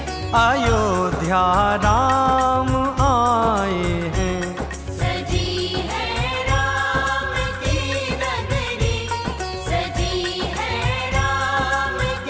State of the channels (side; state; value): both; identical; correlation 1.00